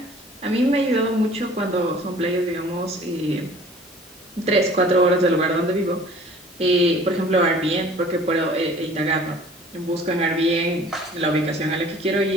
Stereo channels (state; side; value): normal; both; correlation 0.49